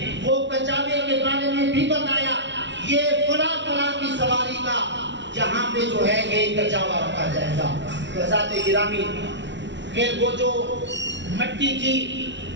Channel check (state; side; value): late; left; 0.52 ms